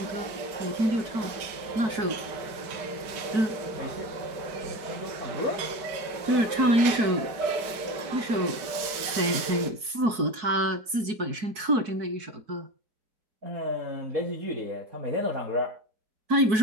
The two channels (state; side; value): late; left; 4.6 ms